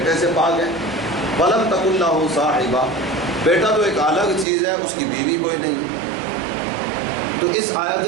سے پاک ہے۔ ولم تکن لہ صاحبہ، بیٹا تو ایک الگ چیز ہے، اس کی بیوی کوئی نہیں۔ تو اس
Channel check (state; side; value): drops out; left; at 4.5 s